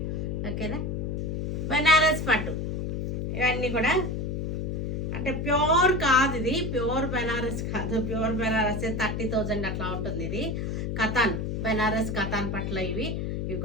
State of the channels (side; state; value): left; noise; hum, 2 dB below the sound